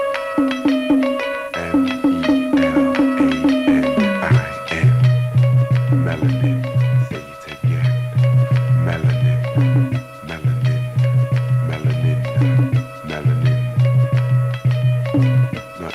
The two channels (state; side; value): identical; both; correlation 1.00